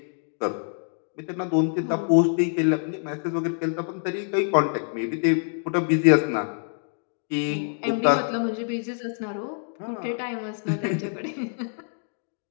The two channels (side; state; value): right; silent; digital silence